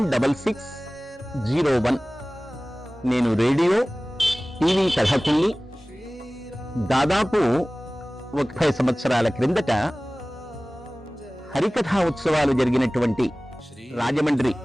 నేను రేడియో, టీవీ కథకుల్ని. దాదాపు 30 సంవత్సరాల క్రిందట హరికథా ఉత్సవాలు జరిగినటువంటి రాజమండ్రి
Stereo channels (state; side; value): normal; both; correlation 0.98